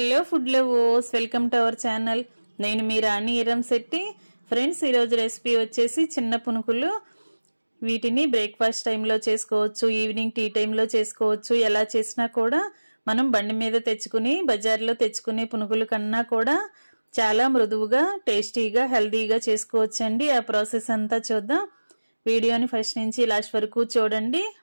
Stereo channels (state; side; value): inverted; both; correlation -1.00